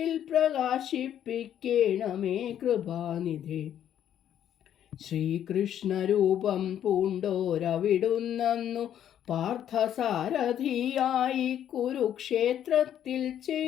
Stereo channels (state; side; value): quieter; right; 10.3 dB